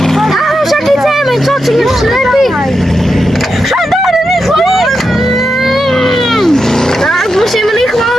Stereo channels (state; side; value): normal; both; correlation 0.87